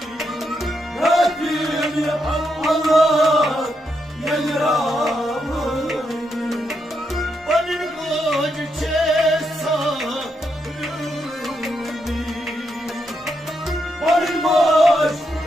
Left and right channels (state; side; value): normal; both; correlation 0.81